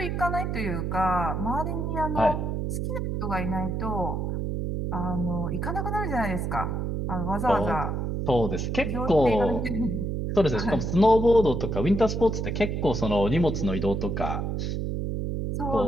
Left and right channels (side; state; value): right; noise; hum, 1 dB below the sound